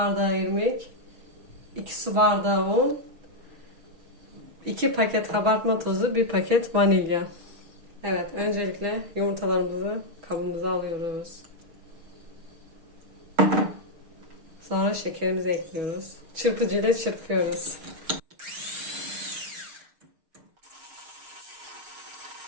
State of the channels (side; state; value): left; late; 6.5 ms